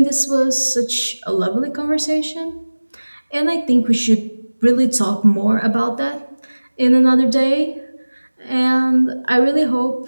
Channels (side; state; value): both; inverted; correlation -1.00